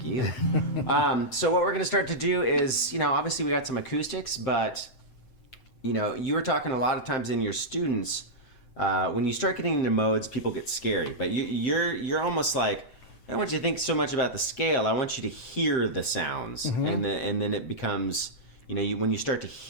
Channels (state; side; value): late; right; 7.8 ms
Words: you. So what we're going to start to do is, obviously we got some acoustics, but, you were talking a lot of times in your students, when you start getting into modes, people get scary. But you're almost like, I don't want you to think so much about the scale. I want you to hear the sounds, and then it becomes, when you start to